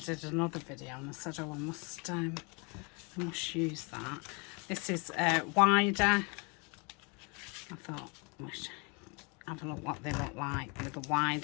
another video, and I said, oh, I must use that. This is wider. I thought I should have a look what they look like with a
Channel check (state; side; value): quieter; right; 31.5 dB